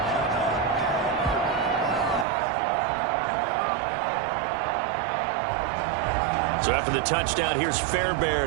So after the touchdown, here's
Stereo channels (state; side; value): drops out; left; at 2.2 s